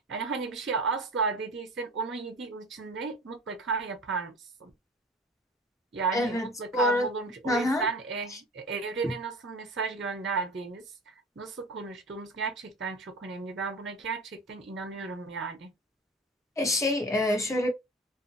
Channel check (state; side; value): normal; both; correlation 0.36